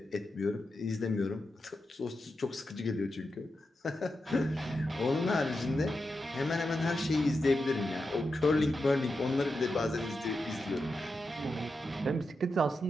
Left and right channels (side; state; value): both; normal; correlation 0.89